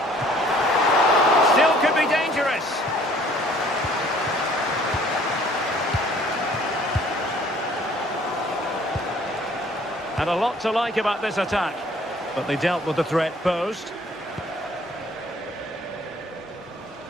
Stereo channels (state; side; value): normal; both; correlation 0.56